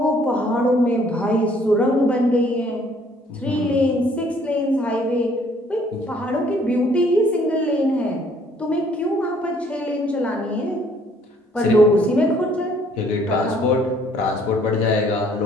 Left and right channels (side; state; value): both; normal; correlation 0.62